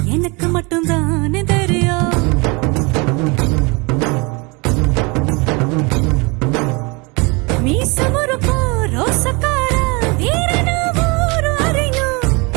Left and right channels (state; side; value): quieter; left; 28.1 dB